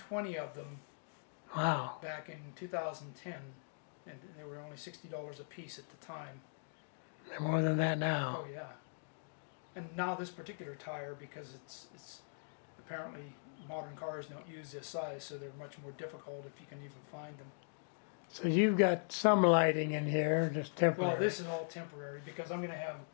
of them Wow. back in 2010, and they were only $60 a piece at the time. They're more than that now. Oh yeah. And now this particular tire, because it's apparently modern cars don't use this size, so they're much more difficult if you can even find them. So you've got some lighting in here, just temporary. Well, this is all temporary because I'm going to have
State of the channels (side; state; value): right; silent; digital silence